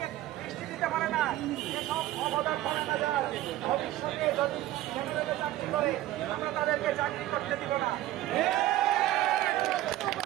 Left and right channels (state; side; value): quieter; left; 15.0 dB